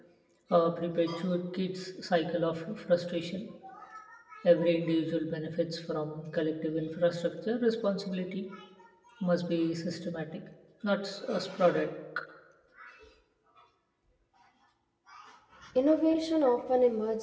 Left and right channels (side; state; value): both; identical; correlation 1.00